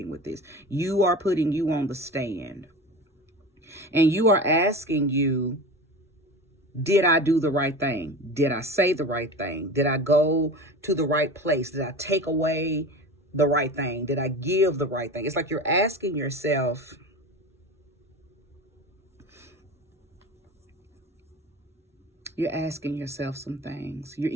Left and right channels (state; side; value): normal; both; correlation 0.32